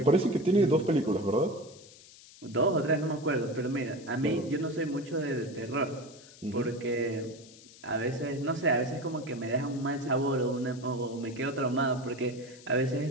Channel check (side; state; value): left; noise; hiss, 21 dB below the sound